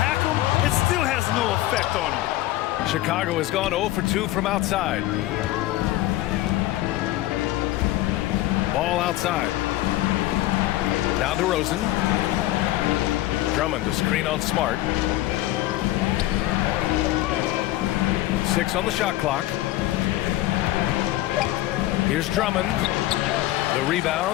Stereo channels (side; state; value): right; quieter; 16.0 dB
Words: him, it still has no effect on him. Chicago has gone 0 for 2 from outside. Ball outside. Now DeRozan. Drummond to screen on Smart. 6 on the shot clock. Here's Drummond. The